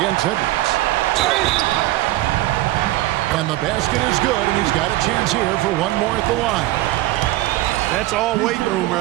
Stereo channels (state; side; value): quieter; left; 17.0 dB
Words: Edwards. And the basket is good, and he's got a chance here for one more at the line. That's all weight room